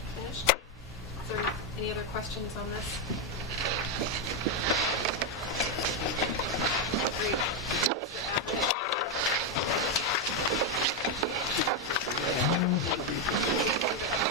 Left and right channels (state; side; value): normal; both; correlation 0.03